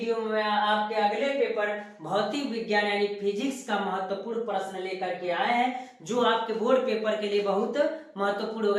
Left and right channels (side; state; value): both; identical; correlation 1.00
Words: में आपके अगले पेपर भौतिक विज्ञान यानी फिजिक्स का महत्वपूर्ण प्रश्न लेकर के आए हैं, जो आपके बोर्ड पेपर के लिए बहुत महत्वपूर्ण